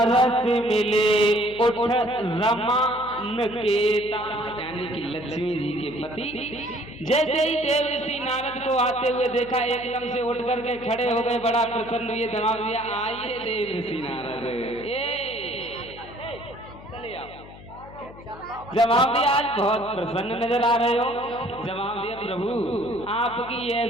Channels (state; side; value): noise; left; hum, 18 dB below the sound